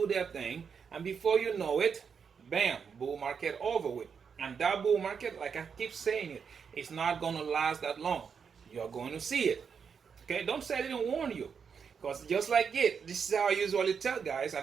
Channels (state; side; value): quieter; left; 6.5 dB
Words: their thing. And before you know it, bam, bull market over with. And that bull market, like I keep saying it's not going to last that long. You're going to see it. Okay, don't say I didn't warn you. Because just like it, this is how I usually tell guys,